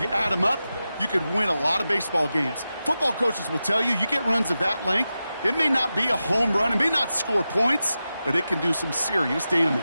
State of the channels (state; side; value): inverted; both; correlation -0.92